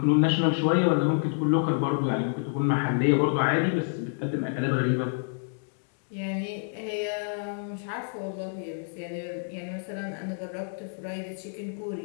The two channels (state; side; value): silent; right; digital silence